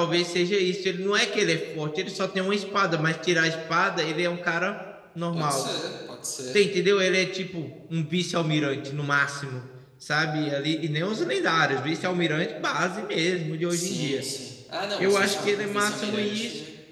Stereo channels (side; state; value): both; identical; correlation 1.00